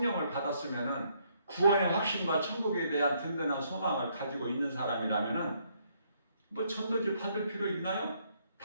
받았으면은 구원의 확신과 천국에 대한 든든한 소망을 가지고 있는 사람이라면은 뭐 전도지 받을 필요 있나요?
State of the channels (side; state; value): both; inverted; correlation -0.70